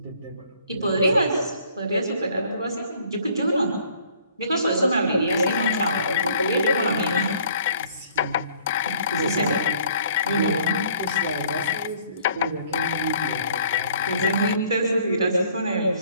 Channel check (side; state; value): both; inverted; correlation -0.58